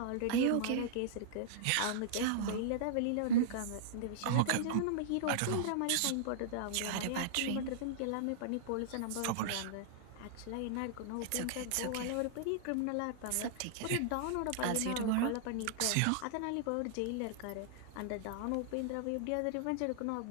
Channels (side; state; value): both; different; correlation -0.01